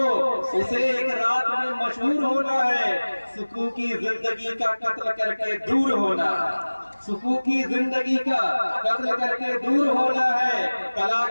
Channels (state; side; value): inverted; both; correlation -1.00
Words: उसे एक रात में मशहूर होना है। सुकून की जिंदगी का कत्ल करके दूर होना है। सुकून की जिंदगी का कत्ल करके दूर होना है। कला